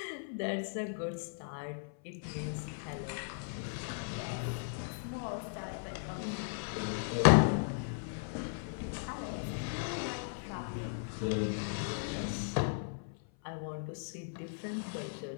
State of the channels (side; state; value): right; silent; 53 dB below the other